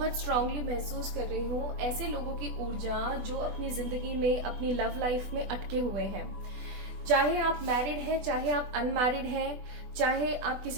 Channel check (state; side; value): late; left; 20 ms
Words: स्ट्रांगली महसूस कर रही हूँ ऐसे लोगों की ऊर्जा जो अपनी जिंदगी में, अपनी लव लाइफ में अटके हुए हैं। चाहे आप मैरिड हैं, चाहे आप अनमैरिड हैं, चाहे आप